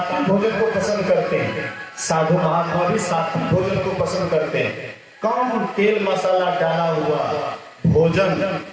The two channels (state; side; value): identical; both; correlation 1.00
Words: भोजन को पसंद करते हैं, साधु महात्मा भी सात्विक भोजन को पसंद करते हैं। कम तेल मसाला डाला हुआ भोजन,